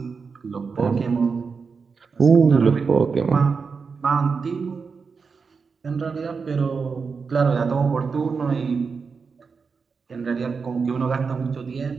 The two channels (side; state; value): left; quieter; 5.2 dB